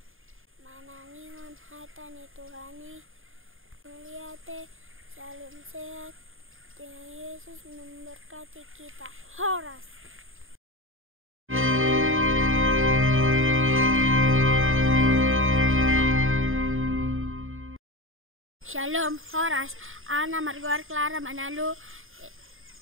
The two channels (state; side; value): late; left; 0.59 ms